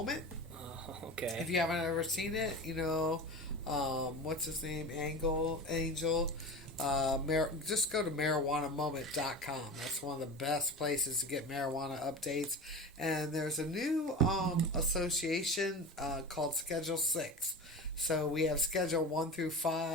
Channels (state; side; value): normal; both; correlation 0.30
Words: Okay. If you haven't ever seen it, what's his name? Angel. Just go to marijuanamoment.com. That's one of the best places to get marijuana updates. And there's a new association called Schedule 6. So we have Schedule 1 through